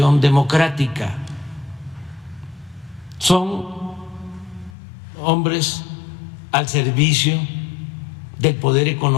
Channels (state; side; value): drops out; right; at 4.8 s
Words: democrática. Son hombres al servicio del poder